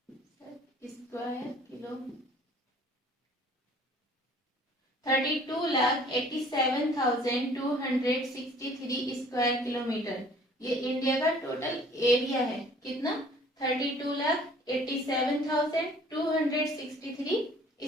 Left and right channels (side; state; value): both; normal; correlation 0.54